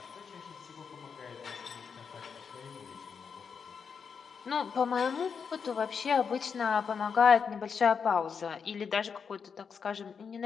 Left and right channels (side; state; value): right; quieter; 6.2 dB